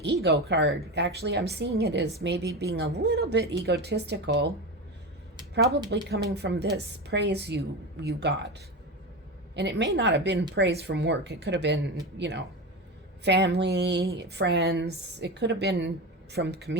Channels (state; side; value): normal; both; correlation 0.22